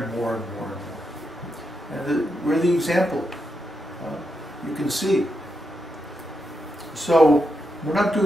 more and more and more. And we're the example. You can see. So we're not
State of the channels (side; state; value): both; normal; correlation 0.84